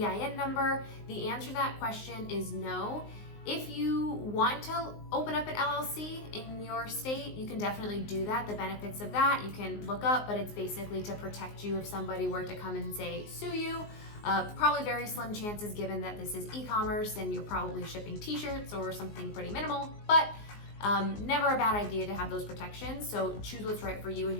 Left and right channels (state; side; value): late; right; 19 ms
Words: number? The answer to that question is no. If you want to open up an LLC in your state, you can definitely do that. The benefits of that you can look up, but it's basically to protect you if somebody were to come and say, sue you. Probably very slim chances given that this is e-commerce and you're probably shipping t-shirts or something pretty minimal, but never a bad idea to have those protections. So choose what's right for you and